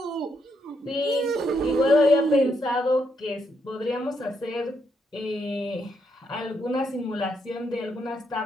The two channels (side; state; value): both; normal; correlation 0.78